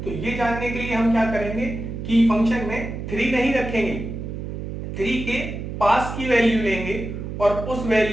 तो ये जानने के लिए हम क्या करेंगे कि फंक्शन में 3 नहीं रखेंगे, 3 के पास की वैल्यू लेंगे और उस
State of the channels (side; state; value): right; noise; hum, 7 dB below the sound